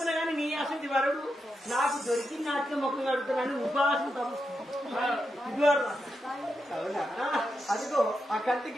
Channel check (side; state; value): both; normal; correlation 0.86